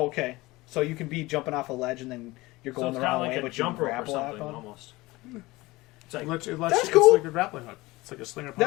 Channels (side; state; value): right; quieter; 20.6 dB